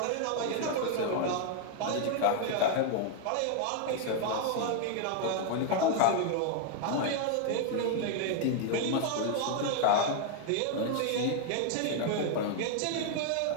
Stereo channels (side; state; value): both; different; correlation 0.00